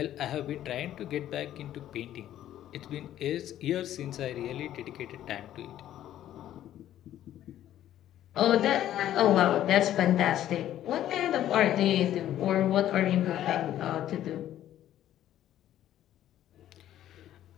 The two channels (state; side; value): quieter; right; 12.1 dB